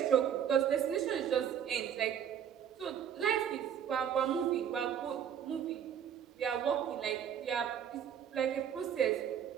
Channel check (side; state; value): left; quieter; 8.8 dB